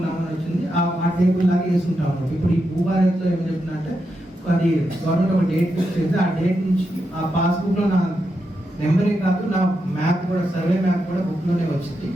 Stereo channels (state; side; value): normal; both; correlation 0.85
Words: వచ్చింది, ఆ టేబుల్ లాగా వేసుకుంటాం అన్నమాట. ఇప్పుడు ఈ భూభారత్లో ఏం చెప్తుందంటే అది గవర్నమెంట్ ఒక డేట్ ఫిక్స్ చేస్తే ఆ డేట్ నుంచి ఆ పాస్బుక్లో నా నెంబరే కాదు నా మ్యాప్ కూడా, సర్వే మ్యాప్ కూడా బుక్లోనే వచ్చింది.